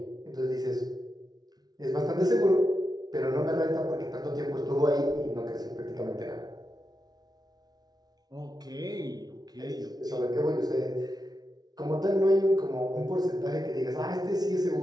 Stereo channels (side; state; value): left; late; 0.19 ms